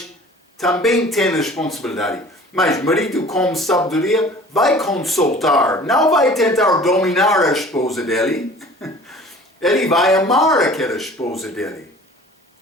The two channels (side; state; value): both; normal; correlation 0.46